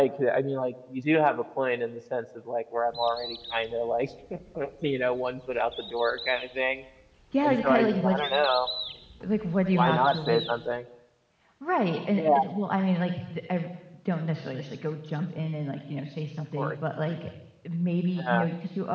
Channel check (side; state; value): both; identical; correlation 1.00